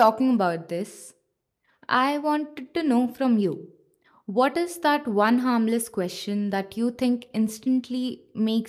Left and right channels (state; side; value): identical; both; correlation 1.00